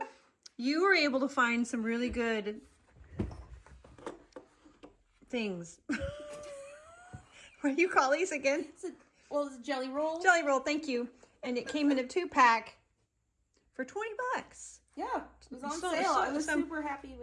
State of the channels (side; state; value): both; identical; correlation 1.00